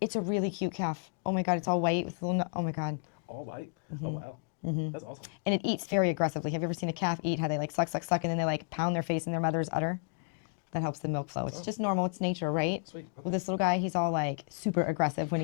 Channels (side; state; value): right; quieter; 38.7 dB